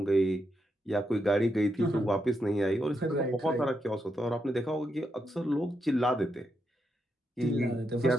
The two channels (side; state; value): both; normal; correlation 0.83